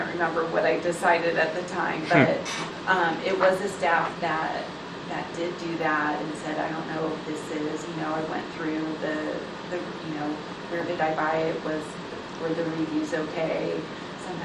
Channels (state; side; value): identical; both; correlation 1.00